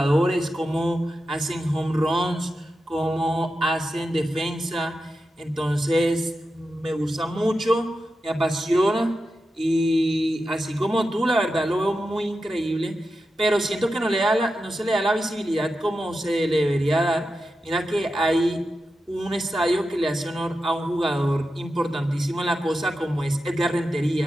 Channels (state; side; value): normal; both; correlation 0.90